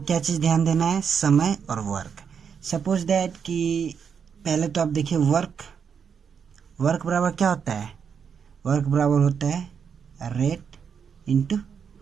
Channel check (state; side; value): quieter; left; 6.9 dB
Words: क्या चीज़ ध्यान देना है, समय और वर्क। सपोज दैट कि पहले तो आप देखिए वर्क बराबर क्या होता है। वर्क बराबर होता है रेट इंटू